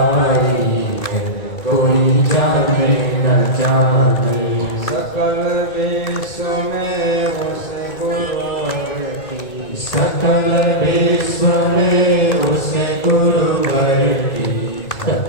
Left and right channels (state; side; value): late; right; 2.2 ms